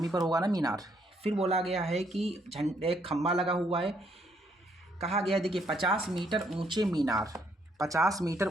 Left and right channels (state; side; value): normal; both; correlation 0.71